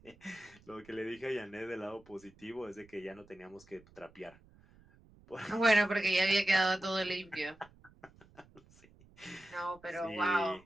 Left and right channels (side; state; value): right; noise; rumble, 26 dB below the sound